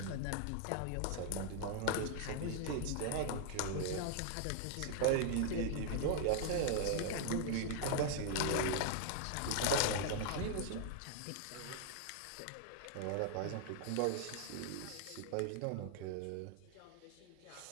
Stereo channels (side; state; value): both; different; correlation 0.00